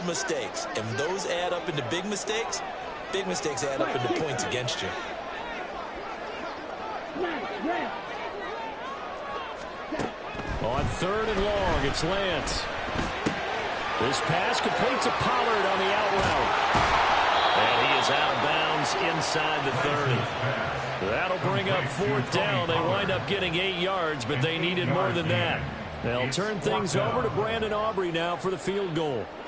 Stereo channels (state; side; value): identical; both; correlation 1.00